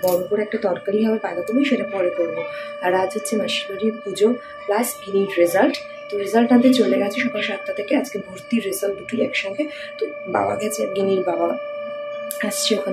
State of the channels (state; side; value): identical; both; correlation 1.00